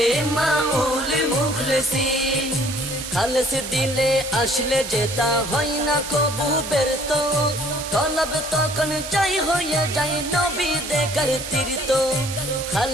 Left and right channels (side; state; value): right; noise; hiss, 8 dB below the sound